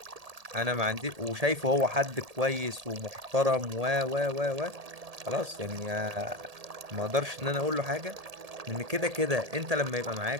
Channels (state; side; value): late; left; 1.8 ms